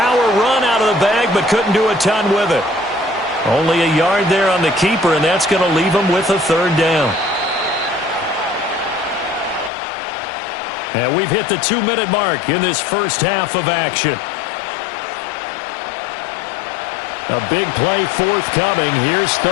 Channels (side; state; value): right; drops out; at 9.7 s